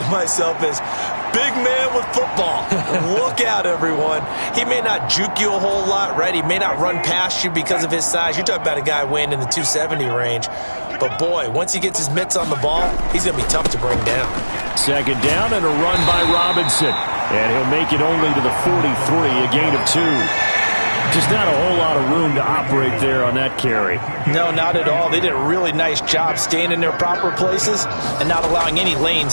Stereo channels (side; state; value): both; inverted; correlation -1.00